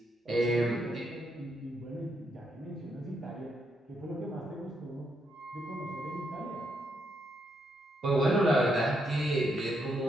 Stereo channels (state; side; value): normal; both; correlation 0.78